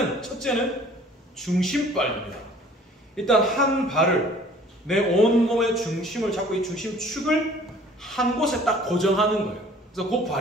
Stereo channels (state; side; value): normal; both; correlation 0.52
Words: 첫째는 중심발입니다. 일단 한 발을 내 온몸의 중심을 잡고 이 중심축을 한 곳에 딱 고정하는 거예요. 그래서 그